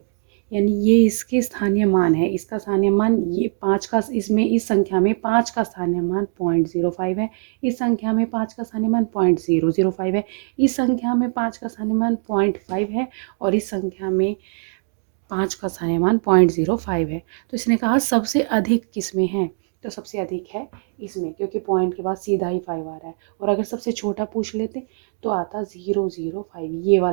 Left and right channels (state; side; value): silent; left; 64 dB below the other